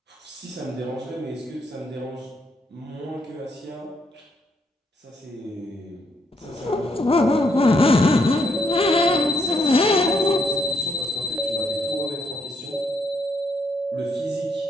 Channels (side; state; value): both; normal; correlation 0.74